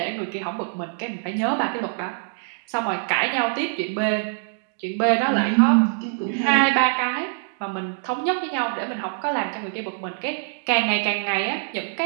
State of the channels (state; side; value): silent; left; digital silence